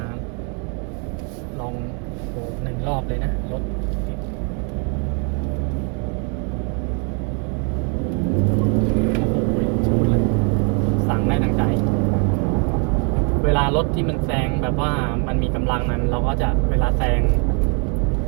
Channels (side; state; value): left; quieter; 37.7 dB